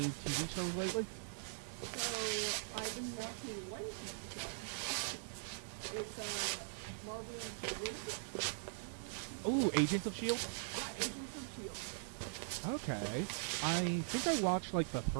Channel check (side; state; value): left; silent; digital silence